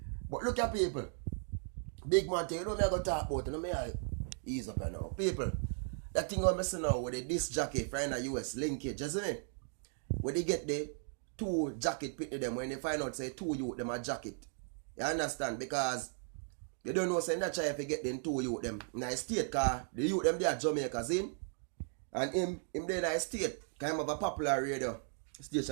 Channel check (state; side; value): silent; left; 53 dB below the other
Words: But look at people. Big man thing, you know me I go talk about, you know me I ease up now. People, that thing I'm missing now with the disc jacket from the US linkage, you see me? When they get the two jacket pit to them, when they find out say two youth them a jacket. You understand? Because you don't know say that try if you get them two youth them in a state car, the youth them they are Jamaica's in. And him there in a state, kind of a popular radio